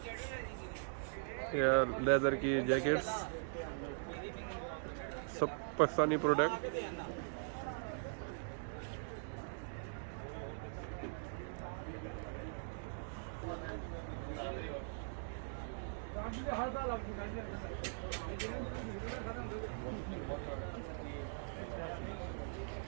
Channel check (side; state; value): left; silent; digital silence